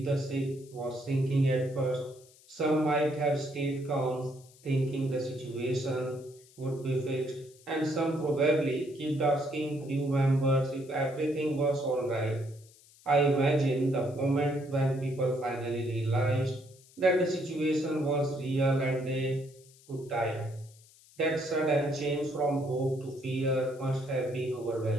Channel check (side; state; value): left; noise; hiss, 26 dB below the sound